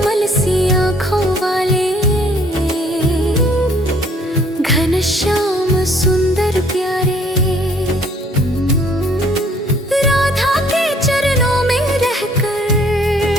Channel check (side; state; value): both; normal; correlation 0.60